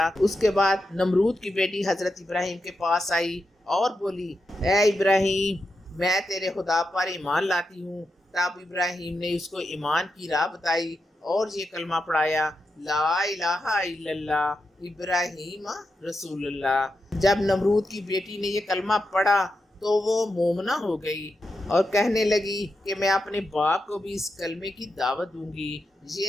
اس کے بعد نمرود کی بیٹی حضرت ابراہیم کے پاس آئی اور بولی اے ابراہیم، میں تیرے خدا پر ایمان لاتی ہوں۔ تب ابراہیم نے اس کو ایمان کی راہ بتائی اور یہ کلمہ پڑھایا لا الہ الا اللہ ابراہیم رسول اللہ۔ جب نمرود کی بیٹی نے یہ کلمہ پڑھا تو وہ مومنہ ہو گئی اور کہنے لگی کہ میں اپنے باپ کو بھی اس کلمے کی دعوت دوں گی۔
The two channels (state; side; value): normal; both; correlation 0.87